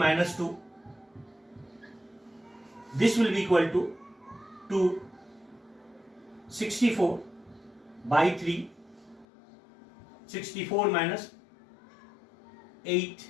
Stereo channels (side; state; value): right; drops out; at 9.2 s